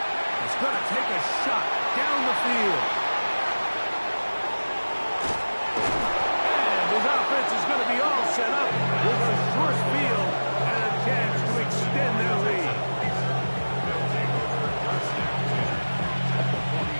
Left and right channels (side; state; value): both; inverted; correlation -1.00